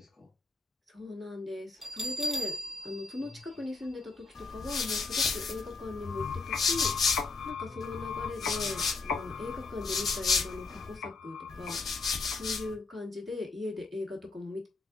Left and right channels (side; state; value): right; quieter; 3.9 dB